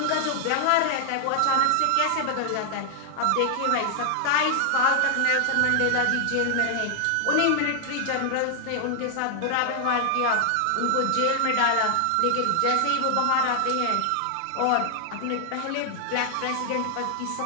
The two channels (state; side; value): different; both; correlation 0.00